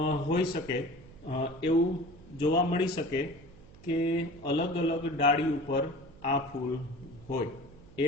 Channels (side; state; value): right; noise; hum, 22 dB below the sound